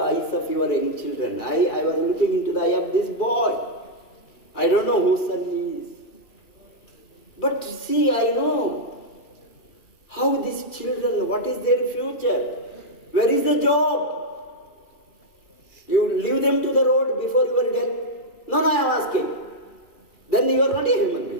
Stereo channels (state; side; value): late; right; 2.4 ms